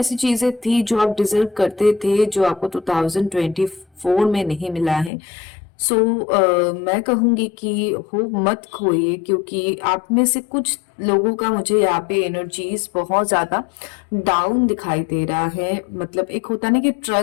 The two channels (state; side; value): drops out; right; at 5.1 s